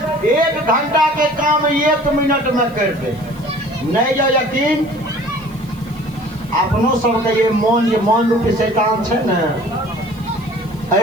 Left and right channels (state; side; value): noise; right; hiss, 27 dB below the sound